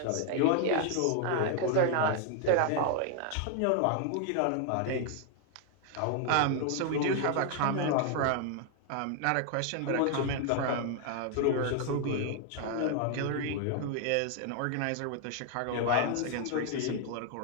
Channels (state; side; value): different; both; correlation 0.00